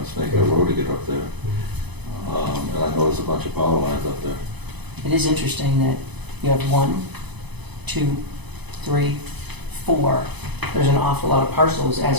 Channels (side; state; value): left; late; 0.99 ms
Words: Snake Hill Road to get up there. And I noticed a bunch of power lines up there. it is interesting that you have 1, 2, 3, 4. There's an awful lot of parcels